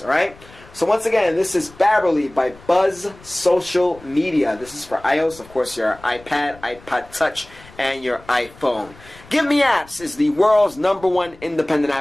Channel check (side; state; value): left; noise; rumble, 23 dB below the sound